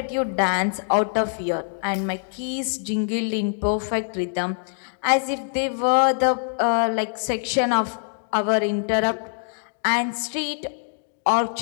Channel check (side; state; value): right; silent; digital silence